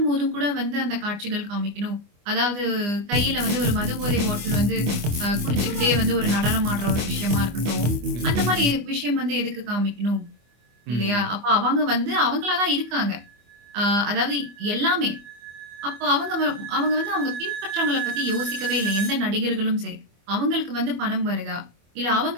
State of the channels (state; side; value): late; left; 25 ms